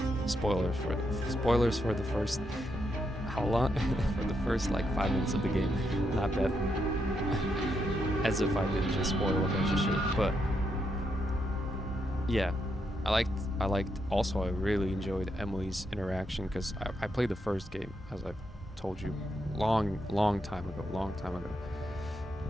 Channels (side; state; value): both; normal; correlation 0.80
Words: Spoilers for the first, how long? For the first like 5 minutes of the game. Not that as if I didn't just spoil a bunch of shit, but yeah, I liked also I really enjoyed Emily's interaction because I played the first game, as I've told you, long time ago.